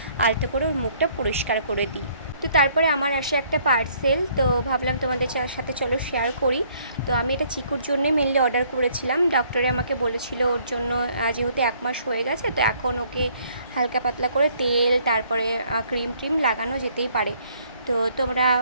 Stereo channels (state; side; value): inverted; both; correlation -0.63